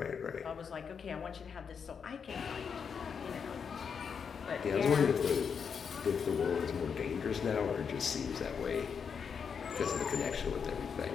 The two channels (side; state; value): right; quieter; 6.5 dB